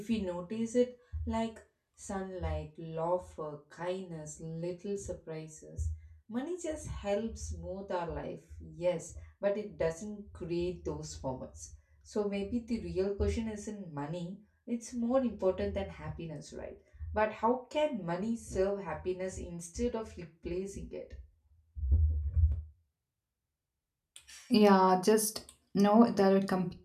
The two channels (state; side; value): identical; both; correlation 1.00